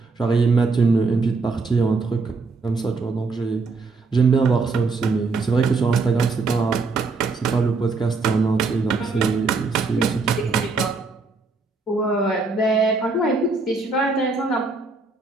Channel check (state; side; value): quieter; left; 4.0 dB